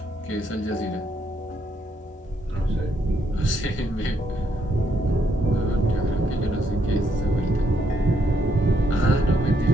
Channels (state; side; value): normal; both; correlation 0.74